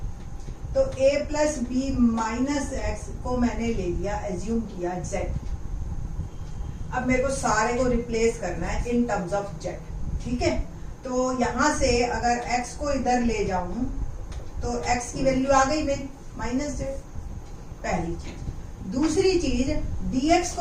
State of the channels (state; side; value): identical; both; correlation 1.00